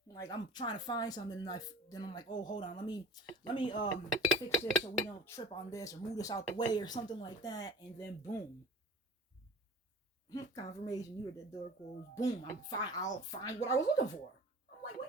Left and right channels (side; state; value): both; normal; correlation 0.41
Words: like I'm trying to find something, and then I'm like, oh, hold on, let me fix this so we don't trip on this or move this out the way or something like that, and then boom, confirmation, you heard that door close, boom, I'll find what I was looking for. I'm like,